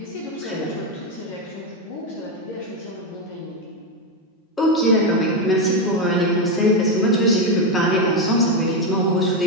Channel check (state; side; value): normal; both; correlation 0.08